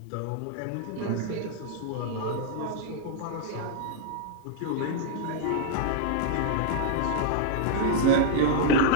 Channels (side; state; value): both; different; correlation -0.01